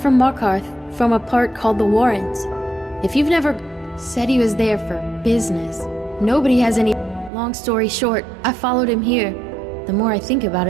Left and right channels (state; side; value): drops out; left; at 7.3 s